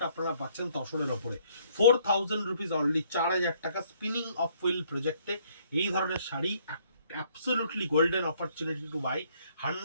আপনারা পাচ্ছেন তসরের ওপরে। 4000 রুপিস অনলি, 4000 টাকা। স্পিনিং অফ হুইল প্রজেক্টে এই ধরনের sari absolutely golden opportunity to buy.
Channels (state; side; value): inverted; both; correlation -0.64